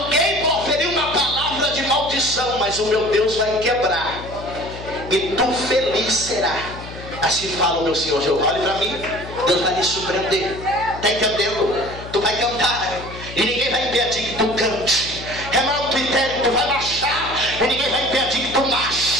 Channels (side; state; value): left; noise; hum, 13 dB below the sound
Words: proferiu uma palavra de maldição, mas o meu Deus vai quebrar, e tu feliz será. Assim fala o meu Senhor Jeová. Olha para mim, Deus vai me surpreender. Está entendendo? Tu vai cantar e ninguém vai impedir que tu cante. Tu vai marchar e ninguém vai impedir que tu